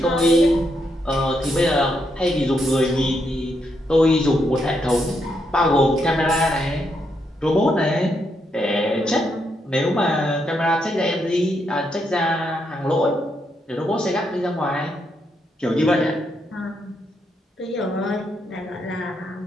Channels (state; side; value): normal; both; correlation 0.79